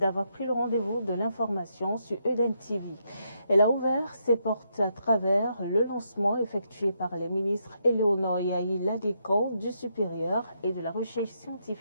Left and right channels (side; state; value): both; inverted; correlation -0.78